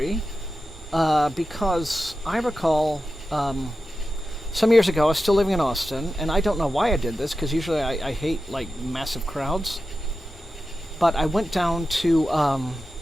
because I recall... some years ago, I was still living in Austin, and I don't know why I did this, because usually I hate, like, massive crowds. But I went down to,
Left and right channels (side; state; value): both; normal; correlation 0.92